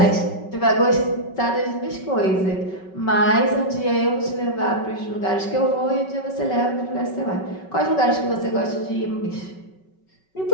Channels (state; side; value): late; right; 5.3 ms